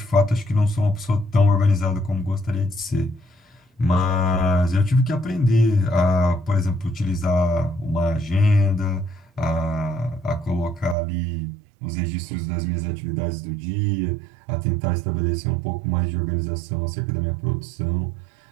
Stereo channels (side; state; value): left; drops out; at 11.0 s